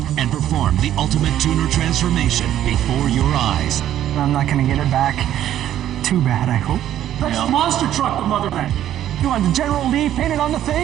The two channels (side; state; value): left; quieter; 11.7 dB